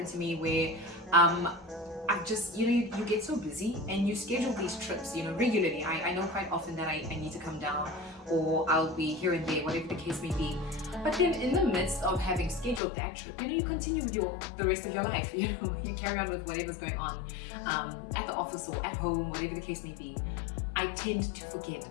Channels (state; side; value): drops out; right; at 12.8 s